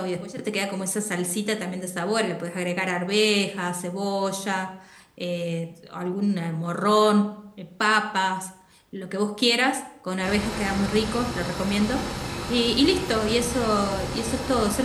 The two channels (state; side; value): identical; both; correlation 1.00